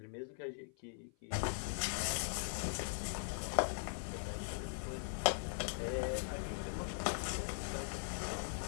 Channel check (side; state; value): right; silent; 50 dB below the other